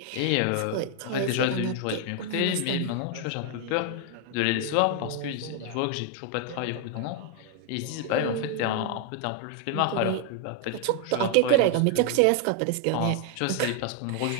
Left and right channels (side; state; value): both; different; correlation 0.00